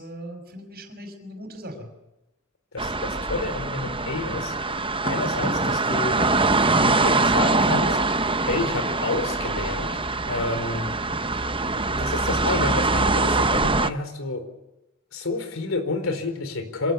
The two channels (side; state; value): both; normal; correlation 0.08